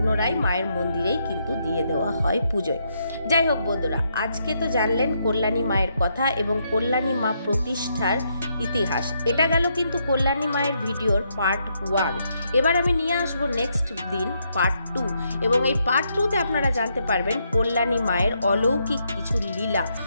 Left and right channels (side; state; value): both; inverted; correlation -0.77